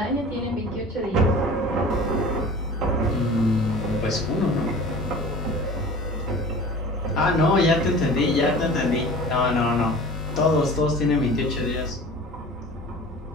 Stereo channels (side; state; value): both; normal; correlation 0.40